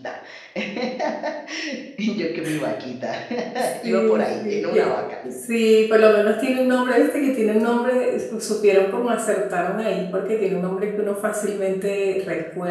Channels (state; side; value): identical; both; correlation 1.00